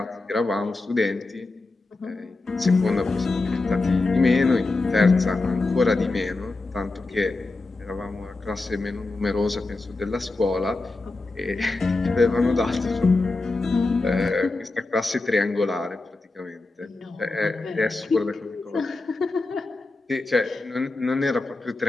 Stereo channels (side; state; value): right; quieter; 3.3 dB